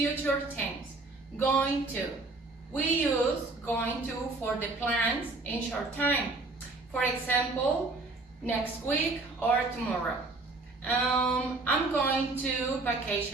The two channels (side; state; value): left; quieter; 3.3 dB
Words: tense. Going to. We use going to for the plans in short time. For example, next week or tomorrow. I'm going to